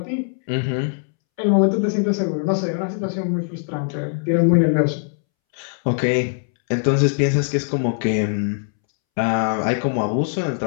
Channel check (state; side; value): silent; right; 65 dB below the other